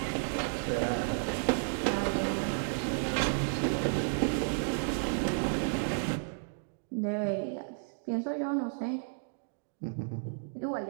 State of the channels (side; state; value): left; silent; digital silence